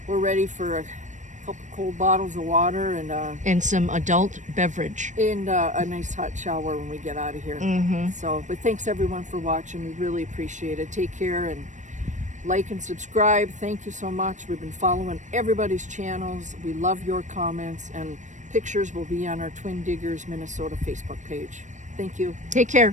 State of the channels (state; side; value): late; left; 0.35 ms